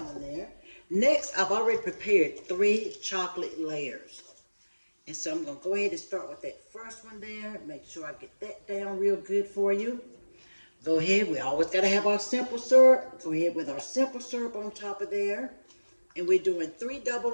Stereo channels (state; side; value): inverted; both; correlation -1.00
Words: there. Next, I've already prepared 3 chocolate layers. And so I'm going to go ahead and start with that first one there. Make sure I get that down real good for you. Go ahead. We always got to have our simple syrup. Go ahead with our simple syrup on top of there. And we're doing 3 double